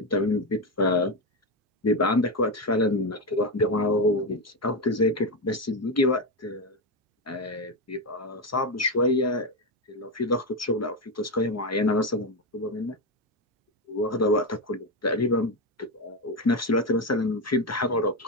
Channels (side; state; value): both; normal; correlation 0.11